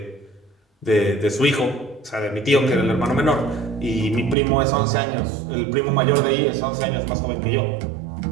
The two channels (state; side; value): drops out; left; at 4.4 s